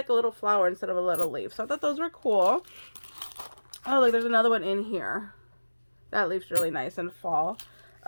a little flower instead of a little leaf. So I thought those were cool. Oh, look, there's another one in here. That leaf's really nice in fall.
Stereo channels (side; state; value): both; inverted; correlation -1.00